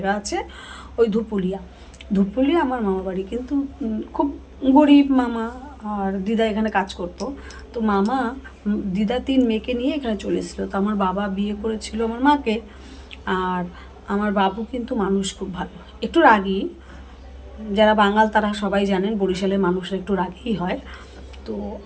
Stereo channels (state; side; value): identical; both; correlation 1.00